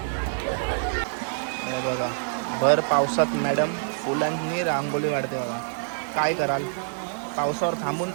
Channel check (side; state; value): left; silent; digital silence